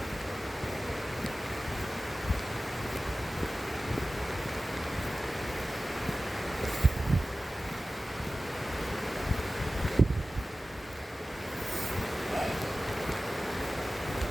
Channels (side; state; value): both; normal; correlation 0.96